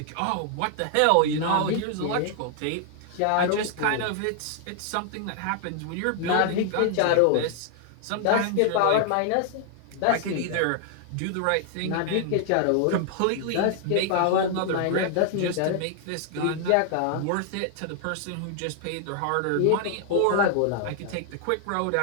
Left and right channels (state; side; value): different; both; correlation 0.00